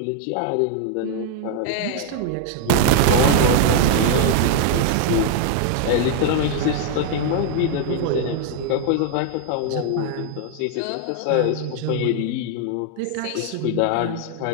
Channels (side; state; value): both; different; correlation 0.00